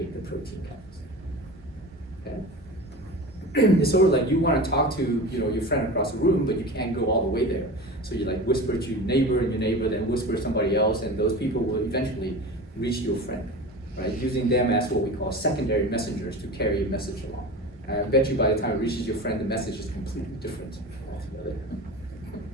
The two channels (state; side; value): normal; both; correlation 0.32